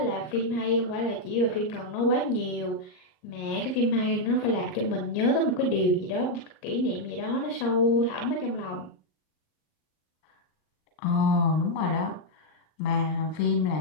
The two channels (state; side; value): late; right; 38 ms